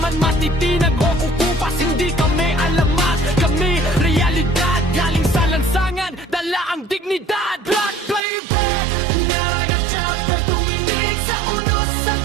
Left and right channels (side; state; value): left; drops out; at 8.2 s